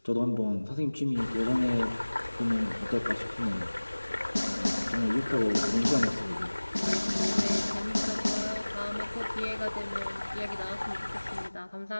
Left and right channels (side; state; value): both; inverted; correlation -1.00